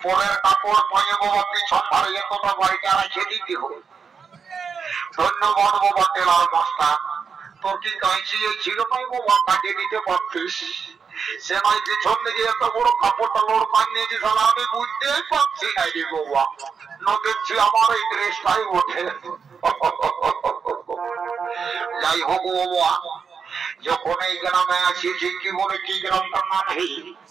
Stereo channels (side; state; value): left; quieter; 6.0 dB